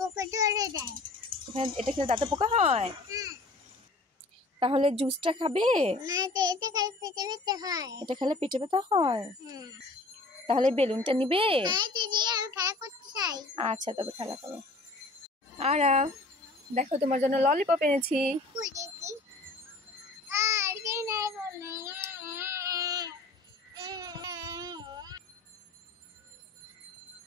ধরে দেয়। এটা খেলে দাঁতে পোকা হয়? হ্যাঁ। তাহলে জুসটা খাবে? না তো এতে খালি পেটে ব্যথা হয়। এটা খেলে পেটে ব্যথা হয়? হ্যাঁ। তাহলে বেলুনটা নিবে? না তো দিয়ে আমি খেলা করতে চাই। আচ্ছা তবে খেলা করো। আর দেখো তোমার জন্য ললিপপ এনেছি। কই দেখি। আর যে নাই বলে।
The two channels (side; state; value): right; quieter; 3.2 dB